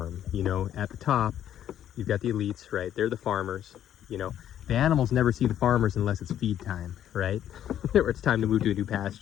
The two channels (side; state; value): right; quieter; 10.7 dB